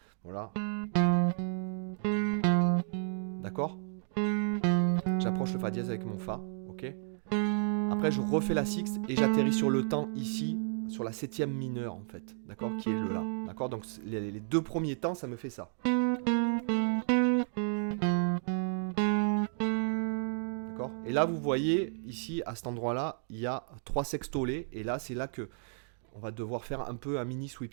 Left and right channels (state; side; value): silent; left; 56 dB below the other